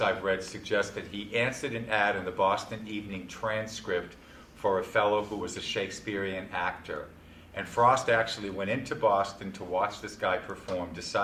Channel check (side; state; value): both; identical; correlation 1.00